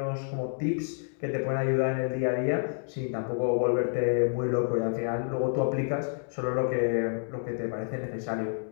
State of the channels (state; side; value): silent; right; digital silence